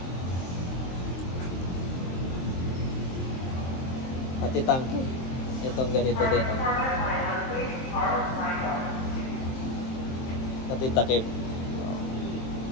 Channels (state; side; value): late; right; 23 ms